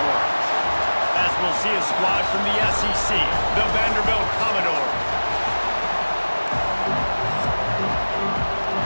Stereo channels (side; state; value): both; inverted; correlation -1.00